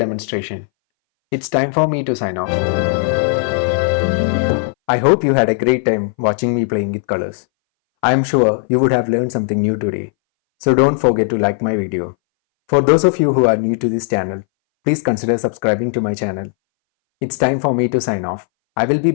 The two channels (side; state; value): right; silent; 63 dB below the other